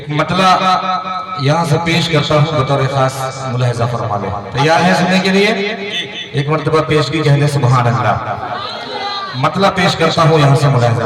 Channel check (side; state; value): both; identical; correlation 1.00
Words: मतला यहाँ से पेश करता हूँ बतौर खास मुलाहिजा फरमा ले। तैयार है सुनने के लिए? एक मर्तबा पेश की कहने सुभान अल्लाह। मतलब पेश करता हूँ यहाँ से